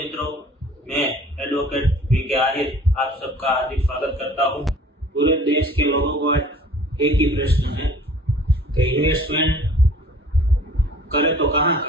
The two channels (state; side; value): normal; both; correlation 0.50